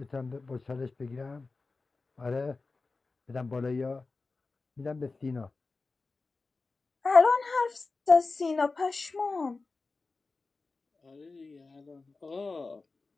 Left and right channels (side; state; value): right; quieter; 3.8 dB